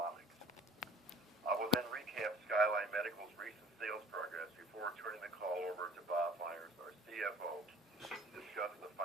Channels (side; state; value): both; normal; correlation 0.49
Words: I will then recap Skyline Medical's recent sales progress before turning the call over to Bob Myers, our CFO, to discuss the